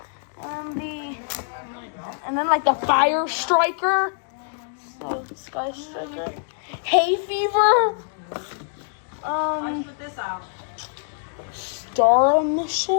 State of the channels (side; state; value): right; silent; digital silence